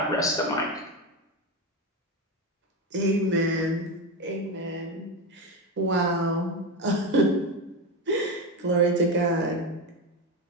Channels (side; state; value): both; normal; correlation 0.16